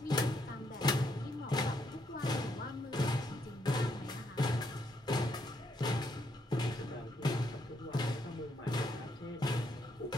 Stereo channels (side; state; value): both; normal; correlation 0.75